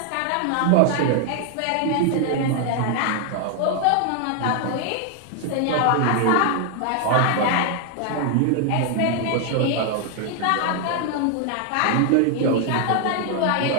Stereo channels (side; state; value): both; different; correlation 0.00